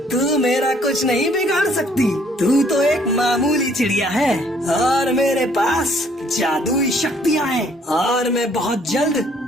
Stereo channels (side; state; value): both; normal; correlation 0.62